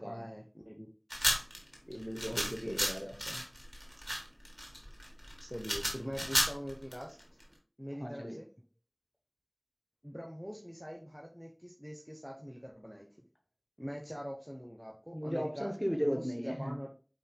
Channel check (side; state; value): both; identical; correlation 1.00